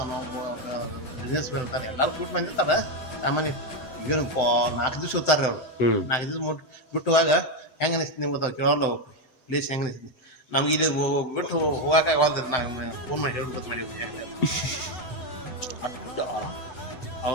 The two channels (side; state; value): right; late; 7.8 ms